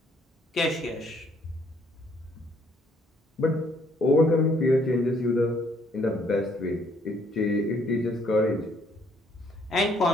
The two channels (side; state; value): both; normal; correlation 0.66